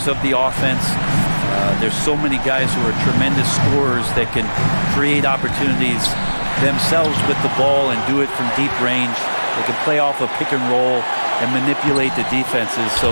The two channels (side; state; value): both; inverted; correlation -1.00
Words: of the offense. There's so many guys who are tremendous scorers that can create opportunities themselves with the ball and do it from deep range. They can play off a pick and roll and manipulate the defenses. So